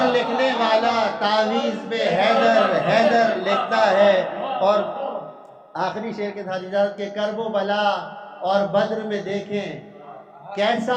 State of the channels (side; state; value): both; identical; correlation 1.00